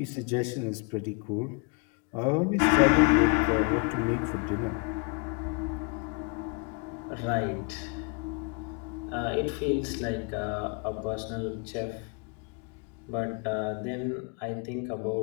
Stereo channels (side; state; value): right; quieter; 31.5 dB